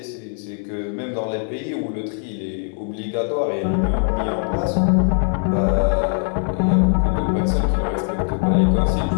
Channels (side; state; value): right; silent; 56 dB below the other